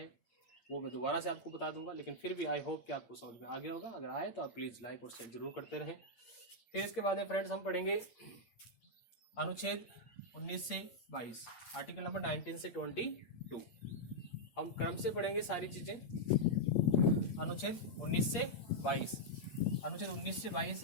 वो मैं दोबारा से आपको बता दूंगा। लेकिन फिर भी आई होप कि आपको समझ में आ गया होगा। अगर आए तो आप प्लीज़ लाइक और शेयर जरूर करते रहें। फिर इसके बाद में फ्रेंड्स हम पढ़ेंगे अनुच्छेद 19 से 22, आर्टिकल नंबर 19 से 22। हम क्रम से पढ़ेंगे सारी चीज़ें। अनुच्छेद 19 से 22, अनुच्छेद 19 से 22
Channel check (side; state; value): right; late; 8.8 ms